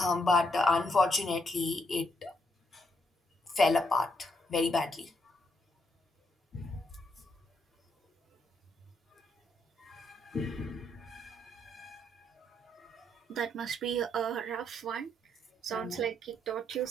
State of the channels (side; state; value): both; normal; correlation 0.76